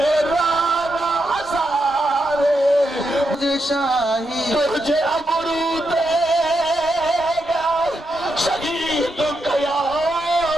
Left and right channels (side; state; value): both; normal; correlation 0.84